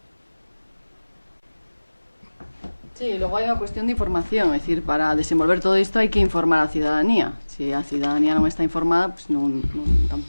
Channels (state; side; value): inverted; both; correlation -1.00